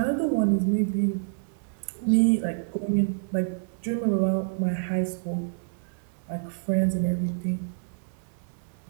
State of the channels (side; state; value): left; silent; digital silence